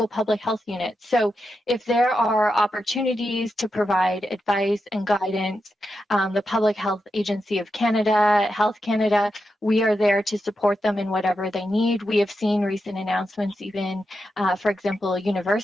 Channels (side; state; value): both; normal; correlation 0.87